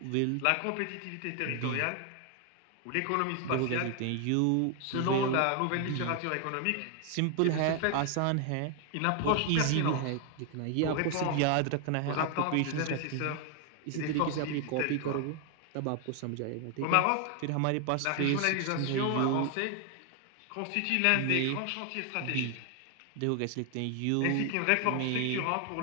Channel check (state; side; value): different; both; correlation 0.00